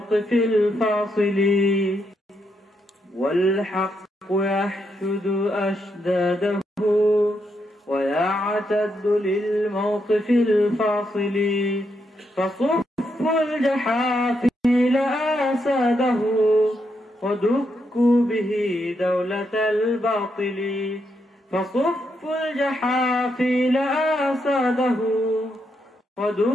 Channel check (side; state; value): both; normal; correlation 0.80